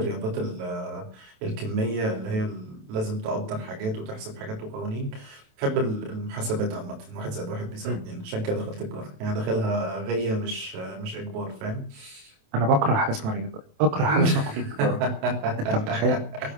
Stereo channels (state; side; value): late; left; 27 ms